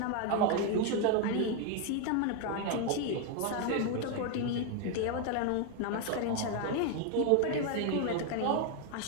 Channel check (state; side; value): different; both; correlation 0.01